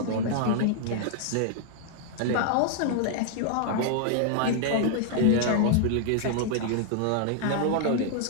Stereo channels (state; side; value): different; both; correlation -0.01